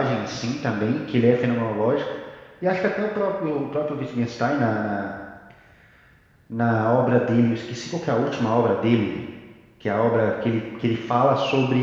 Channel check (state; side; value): identical; both; correlation 1.00